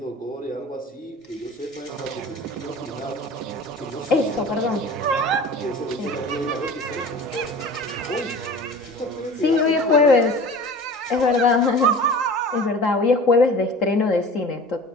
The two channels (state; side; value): normal; both; correlation 0.40